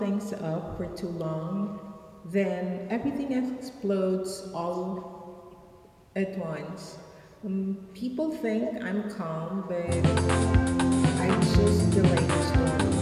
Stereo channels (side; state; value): both; identical; correlation 1.00